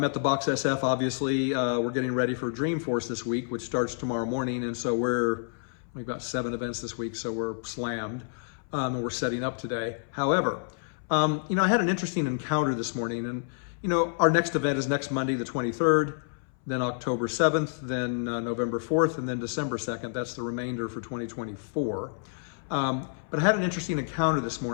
at the Box SF, obviously. We're getting ready for Dreamforce this week, which starts tomorrow morning. And so we've got 7 events this week, so we're slammed. And we're setting up today. However, I had an interesting encounter this morning. And, our next event is next Monday, the 23rd, then October 7th, then November 4th, and then December 2nd. That's the remainder for 2024. But I had an interesting encounter this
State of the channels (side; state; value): right; silent; 59 dB below the other